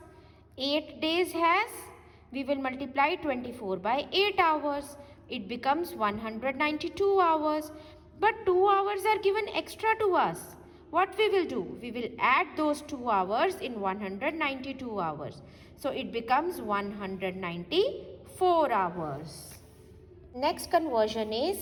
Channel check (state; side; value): identical; both; correlation 1.00